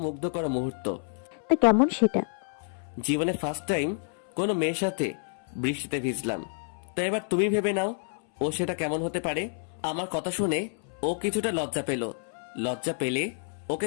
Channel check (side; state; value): right; silent; 59 dB below the other